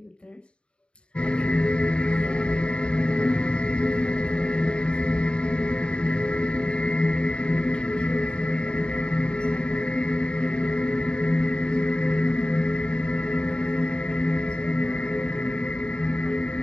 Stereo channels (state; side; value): late; right; 0.054 ms